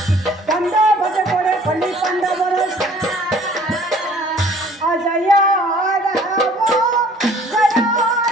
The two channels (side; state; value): both; normal; correlation 0.54